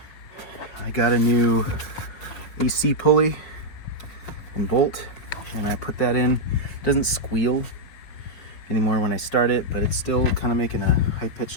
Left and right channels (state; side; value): late; right; 5.1 ms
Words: I got a new AC pulley and bolt, and I put that in. It doesn't squeal anymore when I start it, but it's still kind of making a high-pitched